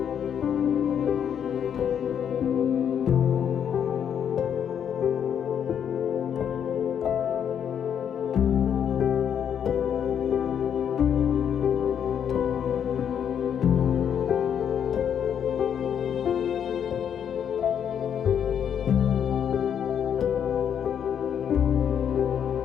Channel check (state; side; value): quieter; right; 8.5 dB